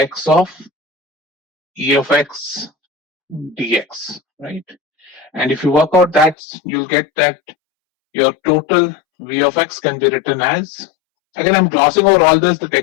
of e of x dx, right? And if you work out that, you'll get that your total v of x can be written as, again, I'm glossing over all this, the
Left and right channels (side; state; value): right; drops out; at 6.4 s